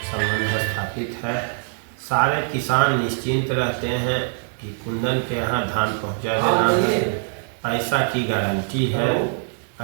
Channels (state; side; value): silent; left; 63 dB below the other